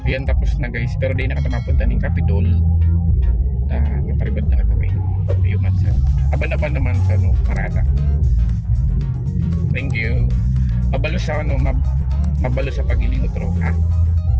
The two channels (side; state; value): both; identical; correlation 1.00